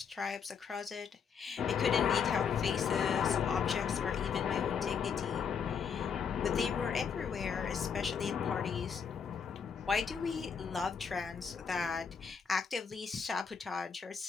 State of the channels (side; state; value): right; quieter; 6.5 dB